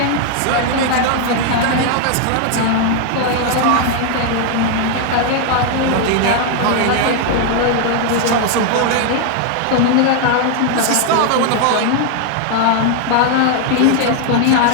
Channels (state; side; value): different; both; correlation 0.00